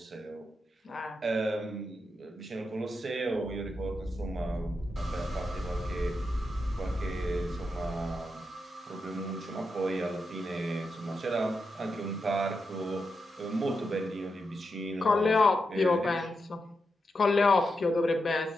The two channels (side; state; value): both; normal; correlation 0.86